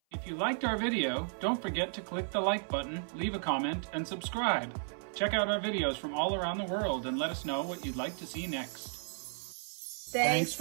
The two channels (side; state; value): left; silent; 55 dB below the other